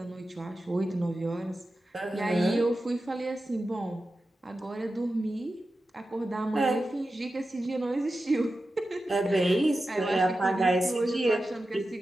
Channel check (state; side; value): normal; both; correlation 0.92